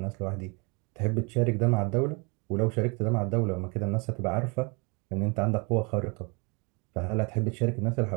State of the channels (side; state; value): left; quieter; 31.3 dB